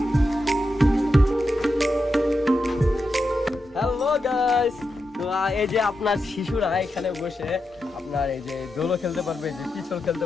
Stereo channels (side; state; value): both; normal; correlation 0.87